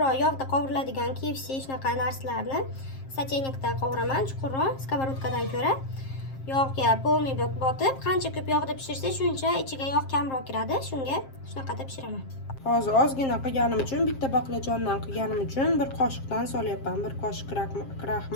yog'da qovuriladigan KFC shunaqa narsalarni soteynikda qovuraman, chuqurroq skоворodkadan ko'ra. Yog'ga polniy botib, qancha ko'p yog'da pishirsa, shuncha ichiga yog' kamroq kiradi. Shunga shunaqada pishiraman. Hozir ozgina qilganim uchun, bitta baqlajondan qilganim uchun 1 qoshiqdan solyapman. 1 qoshiq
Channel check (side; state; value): right; late; 7.5 ms